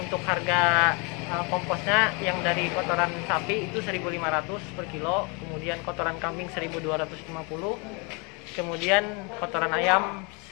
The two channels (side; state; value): right; quieter; 31.7 dB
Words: harga komposnya yang dari kotoran sapi itu 1.500 per kilo, kemudian kotoran kambing 1.250, kemudian kotoran ayam